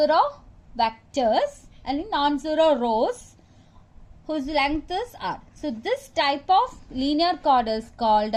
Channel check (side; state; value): both; identical; correlation 1.00